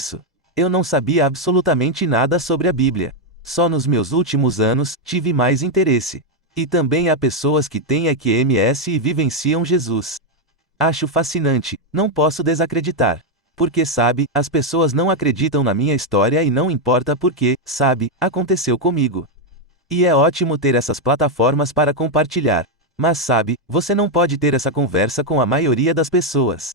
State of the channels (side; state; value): both; normal; correlation 0.02